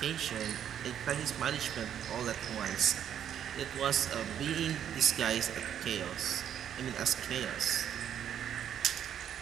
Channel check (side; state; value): left; quieter; 9.6 dB